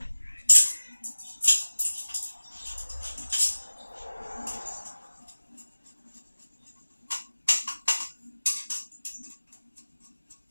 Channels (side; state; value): both; inverted; correlation -1.00